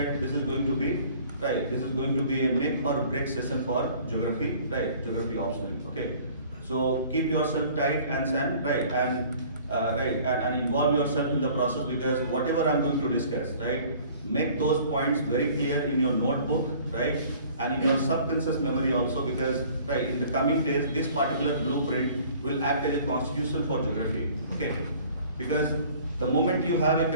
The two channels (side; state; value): both; inverted; correlation -0.51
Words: this is going to be a make or break session for geography, geography optional. Okay, so keep yourself tight and involve yourself in the process, because whatever I'm going to discuss, make those points very clear in your notebook, and in your subconscious memory also, because in the coming days this particular blueprint will act as a constitution for geography. Okay, because the moment you have a